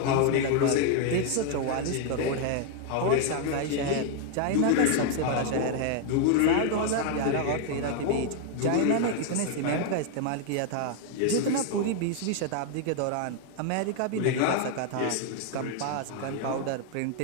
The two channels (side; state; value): both; different; correlation 0.00